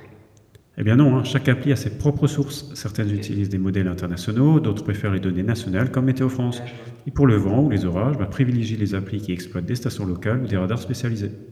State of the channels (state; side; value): identical; both; correlation 1.00